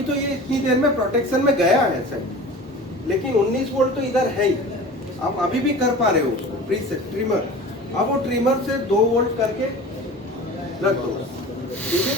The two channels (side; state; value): both; normal; correlation 0.38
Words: तो ये इतनी देर में प्रोटेक्शन में गया है सर, लेकिन 19 वोल्ट तो इधर है ही, आप अभी भी कर पा रहे हो उसको प्रीसेट ट्रिमर। अब वो ट्रिमर से 2 वोल्ट करके रख दो, ठीक है।